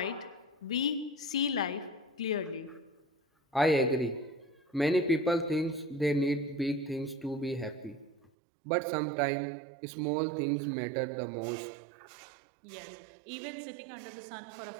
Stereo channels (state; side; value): drops out; left; at 8.3 s